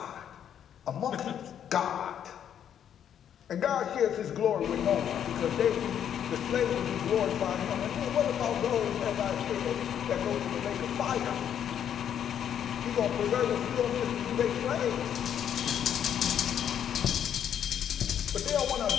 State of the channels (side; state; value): right; quieter; 9.3 dB